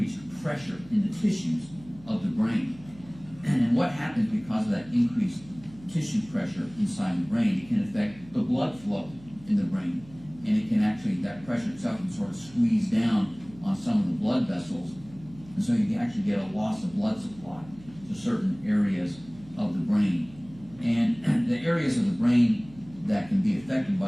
pressure in the tissues of the brain. And what happens because of that increased tissue pressure inside the brain, it can affect the blood flow in the brain. And it can actually, that pressure itself can sort of squeeze down on some of the blood vessels. And so you actually get a loss of blood supply to certain areas of the brain. And the areas of the brain that can be affected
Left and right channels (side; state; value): right; noise; hum, 21 dB below the sound